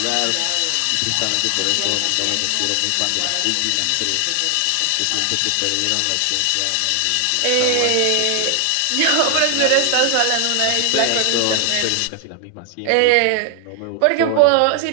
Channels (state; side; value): different; both; correlation 0.00